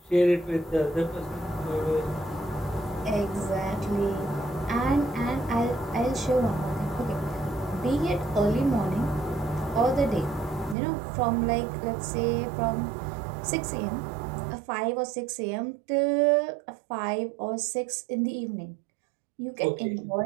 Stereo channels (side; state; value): left; drops out; at 10.8 s